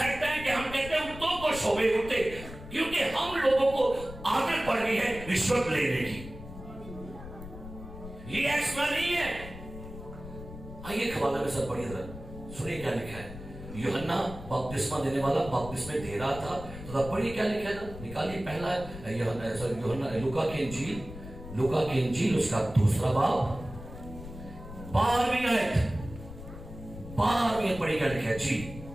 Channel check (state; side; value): noise; left; rumble, 13 dB below the sound